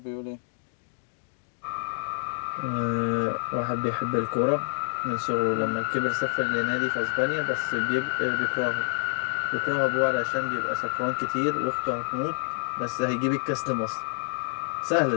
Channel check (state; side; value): silent; right; 60 dB below the other